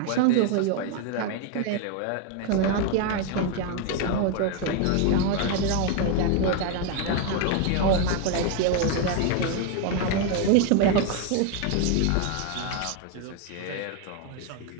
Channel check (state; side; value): different; both; correlation 0.01